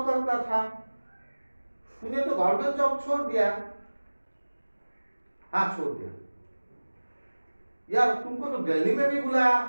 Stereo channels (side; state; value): both; inverted; correlation -1.00